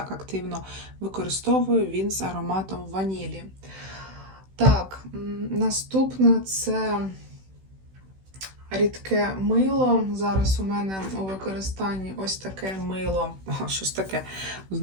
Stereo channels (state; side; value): late; left; 16 ms